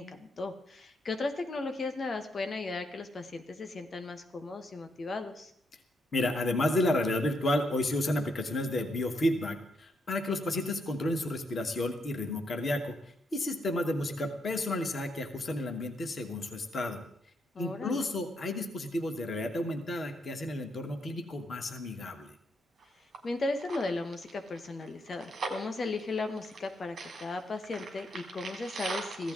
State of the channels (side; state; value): both; normal; correlation 0.78